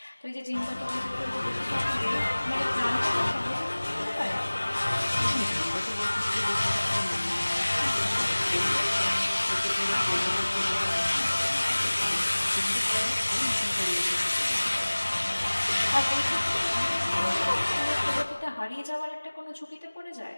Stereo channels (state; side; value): inverted; both; correlation -1.00